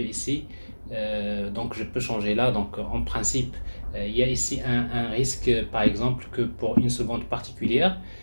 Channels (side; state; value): both; inverted; correlation -1.00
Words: ici, donc je peux changer là. Donc, en principe, il y a ici un risque, par exemple, que pour une seconde particulière,